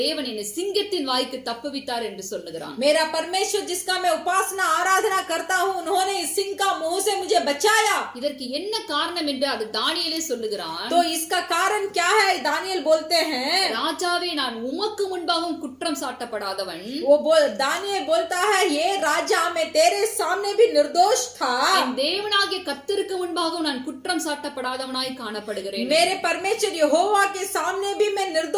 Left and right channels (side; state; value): both; identical; correlation 1.00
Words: தேவன் என்னை சிங்கத்தின் வாய்க்கு தப்புவித்தார் என்று சொல்லுகிறான். मेरा परमेश्वर जिसका मैं उपासना आराधना करता हूँ उन्होंने इस सिंह का मुंह से मुझे बचाया. இதற்கு என்ன காரணம் என்று அது தானியேலே சொல்லுகிறான். तो इसका कारण क्या है दानियल बोलते हैं. ராஜாவே நான் உமக்கு முன்பாகவும் குற்றம் சாட்டப்படாதவன். वो दानियल बोलता है ये राजा मैं तेरे सामने भी निर्दोष था. என் தேவனாகிய கர்த்தருக்கு முன்பாகவும் நான் குற்றம் சாட்டப்படாதவனாய் காணப்படுகிறேன். मेरे परमेश्वर यहोवा के सामने भी मैं